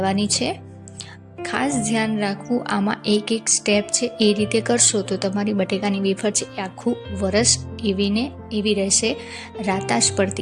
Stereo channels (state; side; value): identical; both; correlation 1.00